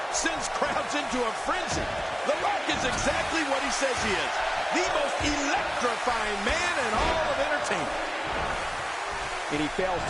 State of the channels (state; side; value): identical; both; correlation 1.00